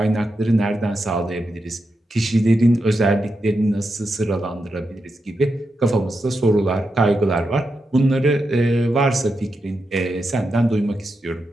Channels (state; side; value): normal; both; correlation 0.87